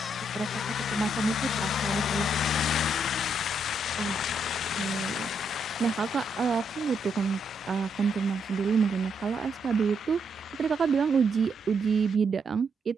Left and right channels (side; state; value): both; normal; correlation 0.77